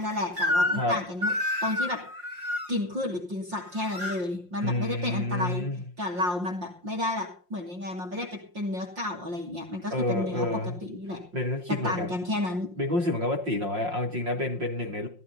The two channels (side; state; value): left; late; 5.6 ms